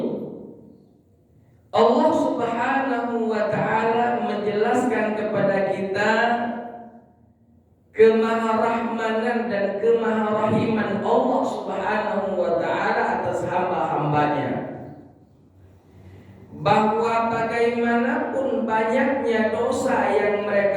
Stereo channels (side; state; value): both; identical; correlation 1.00